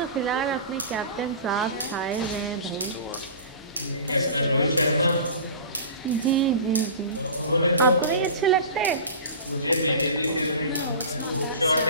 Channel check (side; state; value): both; inverted; correlation -0.37